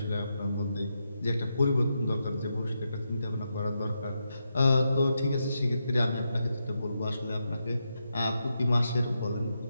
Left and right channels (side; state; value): both; inverted; correlation -0.85